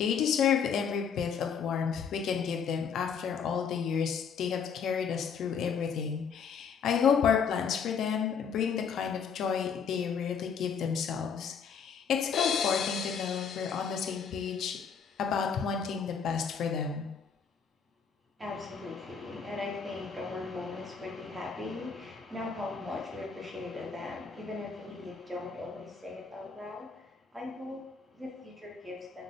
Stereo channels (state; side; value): quieter; right; 6.5 dB